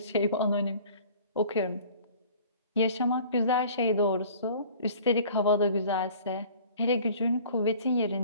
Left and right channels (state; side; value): inverted; both; correlation -0.48